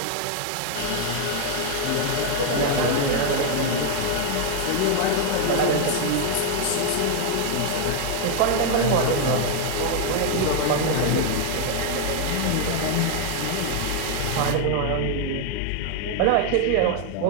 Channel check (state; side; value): different; both; correlation 0.00